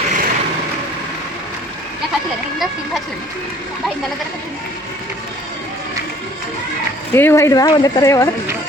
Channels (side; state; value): both; normal; correlation 0.55